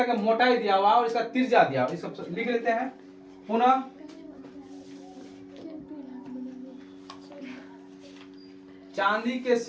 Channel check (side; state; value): both; identical; correlation 1.00